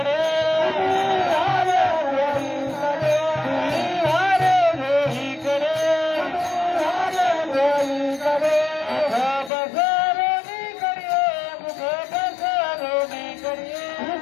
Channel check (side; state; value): right; drops out; at 9.5 s